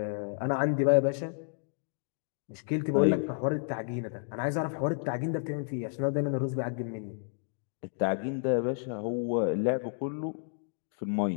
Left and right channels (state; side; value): silent; right; digital silence